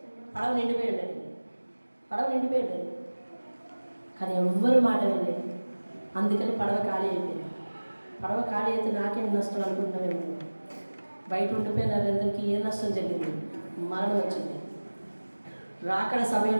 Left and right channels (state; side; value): inverted; both; correlation -1.00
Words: పడవ నిండిపోయి ఉండేది. కానీ ఎవ్వరు మాట వినలేదు. అందుకని పడవ ఖాళీ అయిపోయింది. పడవ ఖాళీ అయితే నాకేం నష్టం అనుకుంటున్నామేమో. బయట ఉండిపోయిన అందరికీ ఏ నష్టం జరిగింది? మరణం వచ్చింది. రాకడ